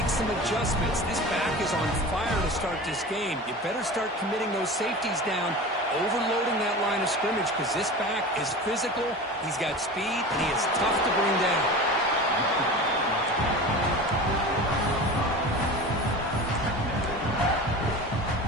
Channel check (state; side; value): normal; both; correlation 0.33